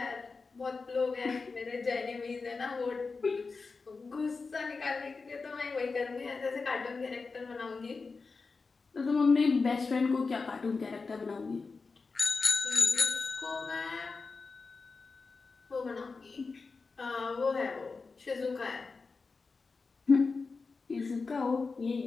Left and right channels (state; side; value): quieter; right; 4.4 dB